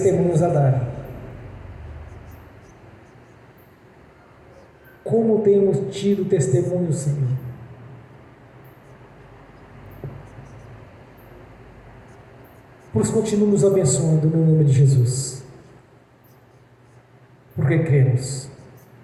a dar. Como temos tido testemunhos, Senhor? Por isso, continue nos abençoando no nome de Jesus, porque cremos.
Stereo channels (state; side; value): identical; both; correlation 1.00